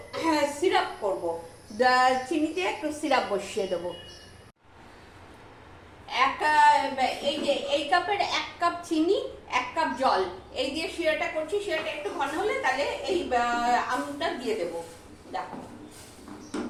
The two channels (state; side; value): identical; both; correlation 1.00